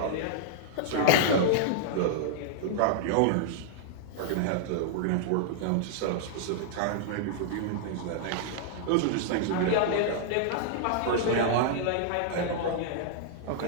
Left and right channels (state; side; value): different; both; correlation -0.01